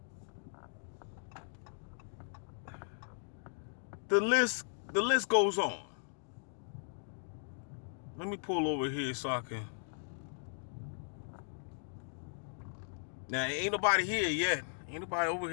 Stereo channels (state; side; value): silent; right; digital silence